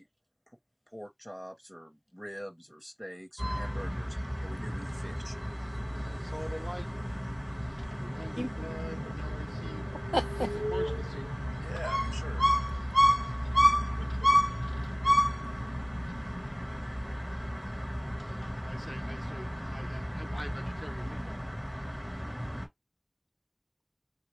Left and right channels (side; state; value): both; identical; correlation 1.00